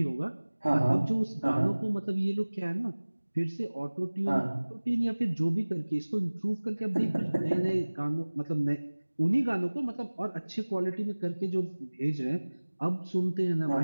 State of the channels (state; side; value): inverted; both; correlation -1.00